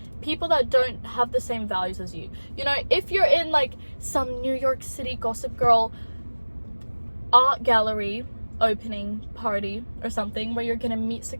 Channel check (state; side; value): inverted; both; correlation -1.00